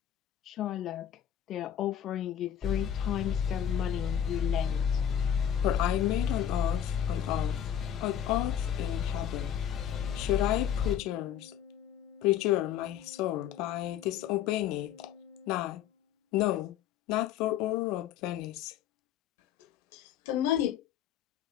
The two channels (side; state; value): right; quieter; 9.7 dB